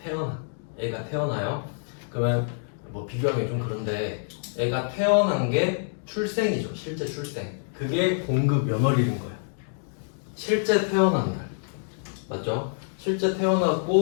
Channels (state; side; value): silent; right; digital silence